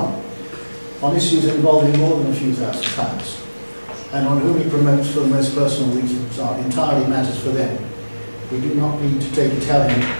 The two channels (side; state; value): both; inverted; correlation -1.00